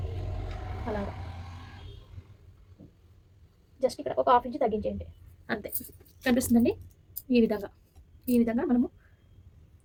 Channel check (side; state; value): both; identical; correlation 1.00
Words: అలాగా జస్ట్ ఇక్కడ ఒక 1/2 ఇంచ్ తగ్గించేయండి అంతే. కనిపిస్తుందండి. ఈ విధంగా మనము